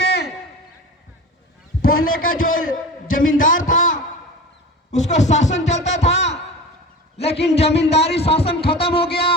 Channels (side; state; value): both; normal; correlation 0.33